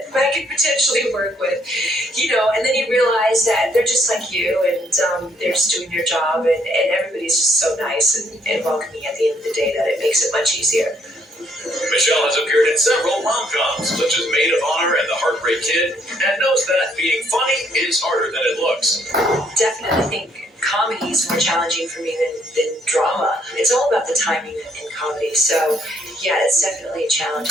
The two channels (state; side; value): normal; both; correlation 0.69